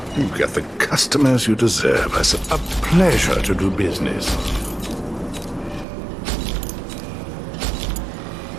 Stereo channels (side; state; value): left; drops out; at 5.9 s